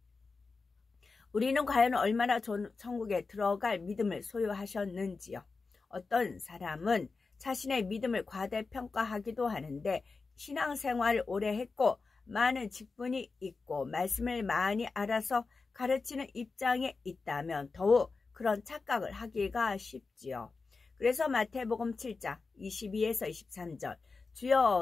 우리는 과연 얼마나 좋은 천국에 들어갈 믿음을 소유하셨는지요. 어떤 사람은 자신의 믿음을 과대평가하기도 하는데 신앙생활을 오래 했고 많은 직분이 있고 말씀을 많이 알아서 가르치는 입장에 있다면 더욱 그런 착각을 하기가 쉽지요. 그래서 마태복음 7장 22에서 23절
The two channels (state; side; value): quieter; right; 4.2 dB